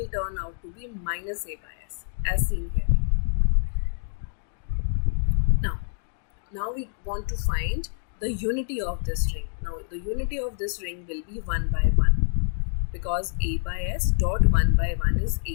turn out to be minus A by S, as seen here. Now we want to find the unity of this ring. Now the unity of this ring will be 1 by 1, because A by S dot 1 by 1 is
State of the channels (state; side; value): silent; right; digital silence